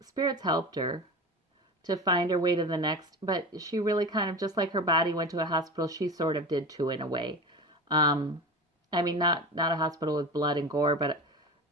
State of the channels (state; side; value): normal; both; correlation 0.29